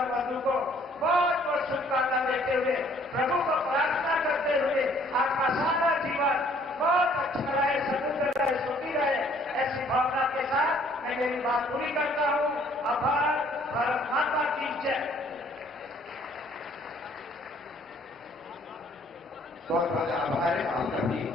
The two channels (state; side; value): normal; both; correlation 0.60